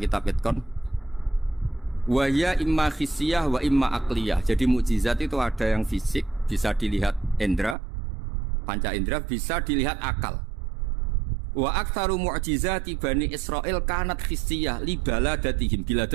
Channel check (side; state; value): left; drops out; at 7.8 s